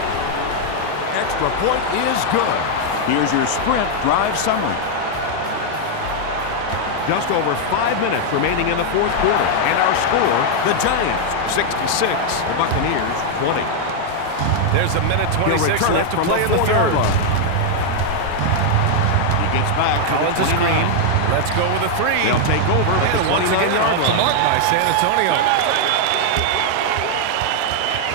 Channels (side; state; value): both; different; correlation 0.00